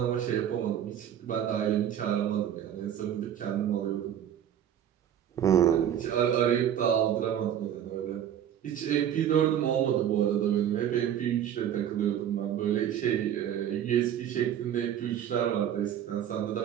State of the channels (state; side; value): quieter; left; 10.0 dB